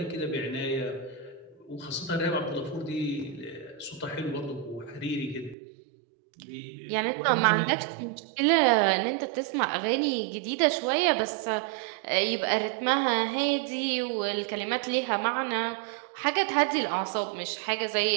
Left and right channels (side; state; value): left; drops out; at 5.6 s